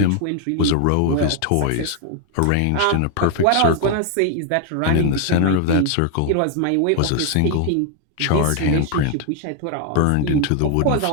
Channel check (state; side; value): different; both; correlation 0.00